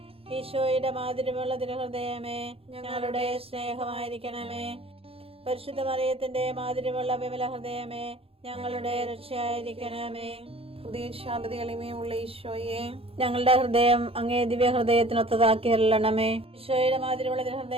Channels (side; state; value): left; late; 0.27 ms